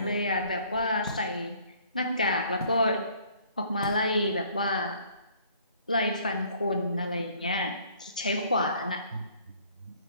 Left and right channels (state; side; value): inverted; both; correlation -0.58